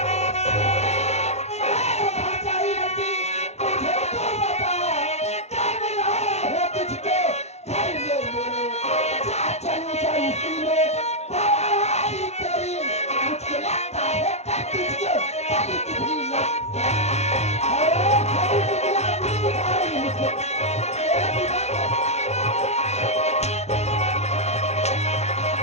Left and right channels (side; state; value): right; late; 0.31 ms